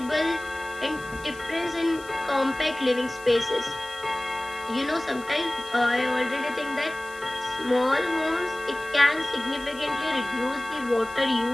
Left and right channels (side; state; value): left; noise; hiss, 21 dB below the sound